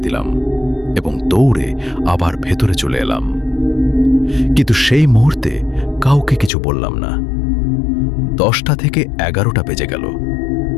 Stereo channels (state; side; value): drops out; right; at 6.5 s